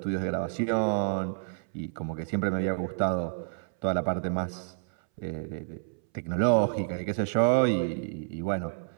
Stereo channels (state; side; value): silent; left; 58 dB below the other